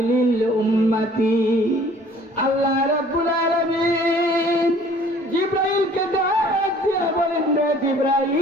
উম্মতি, আল্লাহ রাব্বুল আলামিন জিবরাইলকে ডাক দিয়ে বলেন, রে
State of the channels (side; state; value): both; normal; correlation 0.54